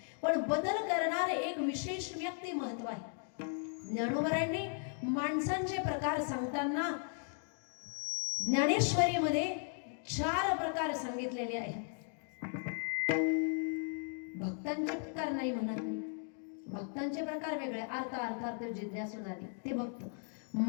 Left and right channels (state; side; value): silent; right; 53 dB below the other